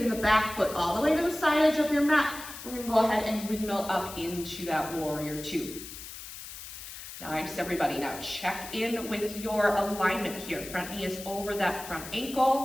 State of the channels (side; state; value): left; noise; hiss, 12 dB below the sound